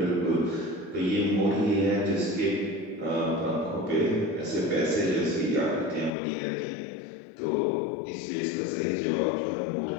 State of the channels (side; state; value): right; drops out; at 6.1 s